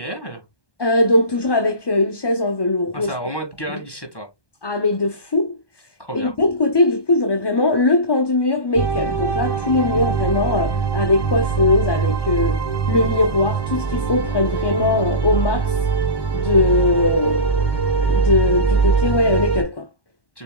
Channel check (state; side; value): late; right; 1.2 ms